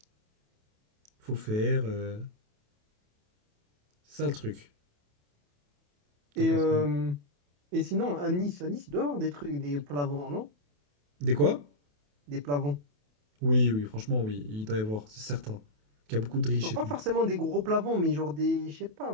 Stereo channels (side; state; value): left; late; 28 ms